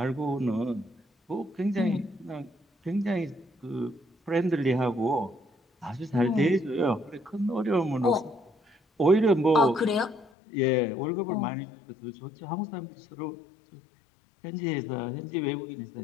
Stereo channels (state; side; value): drops out; right; at 10.3 s